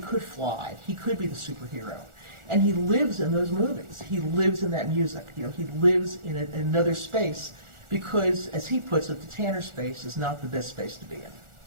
fly, he could be the superhero. And he lives in those movies. He lives in that music. He lives in another space because, as he puts it, the Tanner space is not the best space to be in.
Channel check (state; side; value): late; left; 1.4 ms